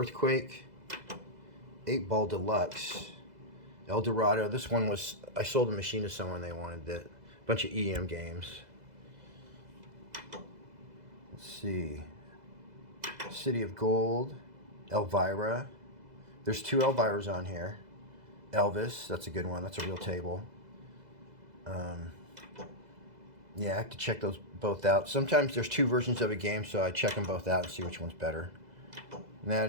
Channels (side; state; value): left; late; 2.0 ms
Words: 8-Ball Deluxe, El Dorado. This one was, I sold the machine to someone, they wanted it. Bunch of EM games. Let's see. City of Gold, Elvira. There's 2 Elviras on here. Elvis, that's a good one. That's a real table. Yeah, I have to check those both out. Sometimes there's 2 versions of a game, so I check them both out and see which one's better. And